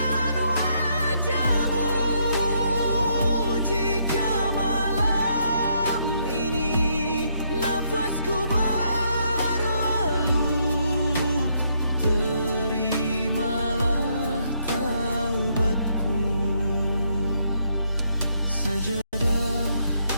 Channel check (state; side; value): inverted; both; correlation -0.74